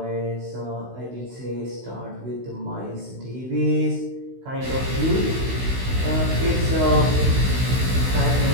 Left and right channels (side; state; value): left; late; 16 ms